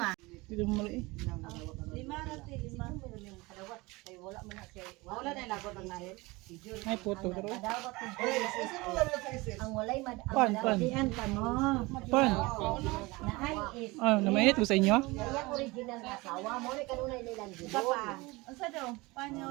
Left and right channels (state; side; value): quieter; left; 23.0 dB